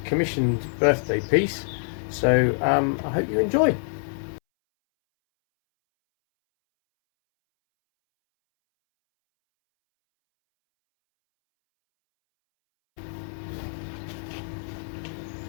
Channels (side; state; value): right; silent; 61 dB below the other